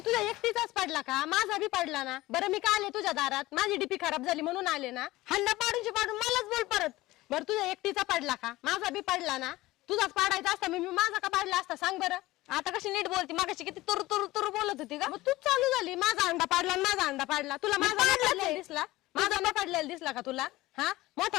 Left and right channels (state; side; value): quieter; right; 18.4 dB